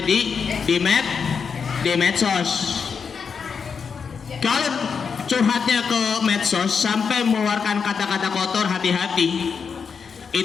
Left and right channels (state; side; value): quieter; right; 6.0 dB